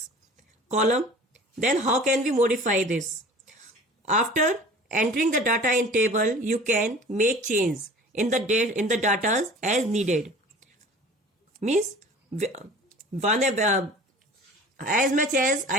column. Then how can we modify this? After entering the data in table, you can make change in the data as needed. Means as much as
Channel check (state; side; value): normal; both; correlation 0.43